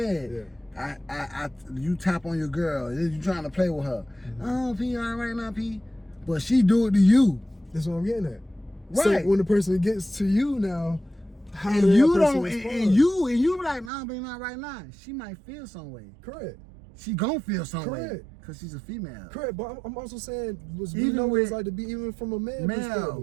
Yeah. You tap on your girl, you trying to play with her. Oh, P, all right now, P. But she do it to you. That's what I'm getting at. Right. So when the person gets to you now, how and does you that person don't, respond? and you be like, nah, but not right now. She might feel some way. Correct. She gon' feel some way. Correct. Because she's a female. Correct, but I'm also saying we Even know what with it's like to be even from a man male,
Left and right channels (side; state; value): left; drops out; at 13.9 s